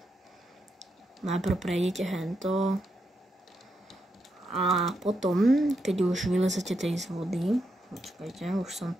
Najprv prejdete hento a potom, keď už vylezete tej z vody, počkajte, už som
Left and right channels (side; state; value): both; normal; correlation 0.83